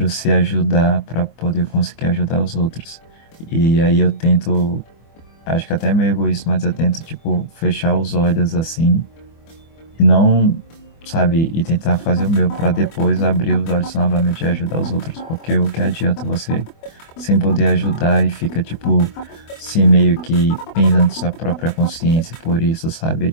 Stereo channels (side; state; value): right; late; 24 ms